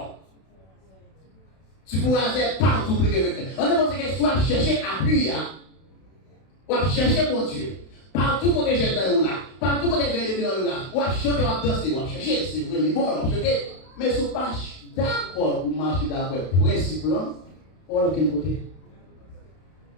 tu pourras faire partout plus que quelqu'un. On dit que soit chercher appui, ou chercher mon Dieu. Partout où j'ai dans là, partout où j'ai dans là, ou chanter, ou danser, ou chercher, c'est vraiment bon, on chercher. Mais si vous pas d'accord pour marcher d'accord, principe là, on va aucun côté.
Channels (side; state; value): right; late; 32 ms